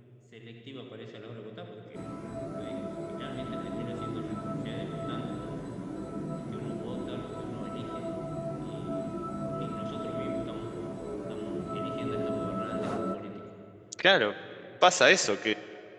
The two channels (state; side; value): identical; both; correlation 1.00